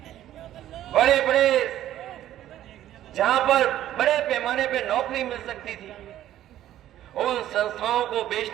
बड़े बड़े जहां पर बड़े पैमाने पे नौकरी मिल सकती थी, उन संस्थाओं को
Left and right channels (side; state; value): left; quieter; 12.6 dB